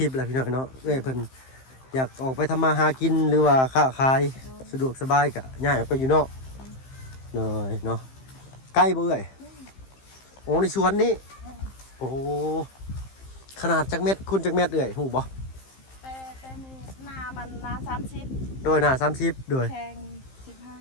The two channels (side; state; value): right; late; 15 ms